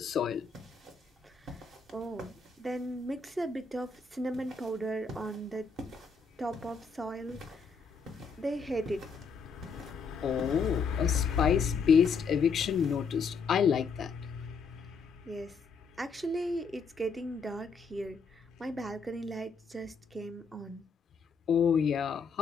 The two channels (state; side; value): quieter; right; 5.1 dB